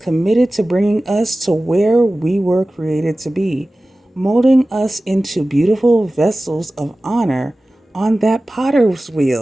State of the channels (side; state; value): both; normal; correlation 0.96